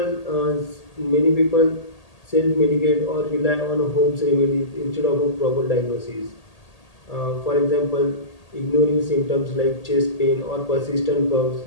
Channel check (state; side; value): late; right; 1.8 ms